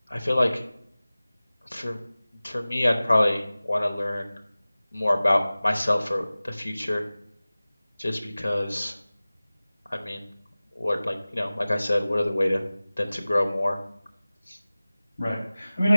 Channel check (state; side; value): inverted; both; correlation -0.98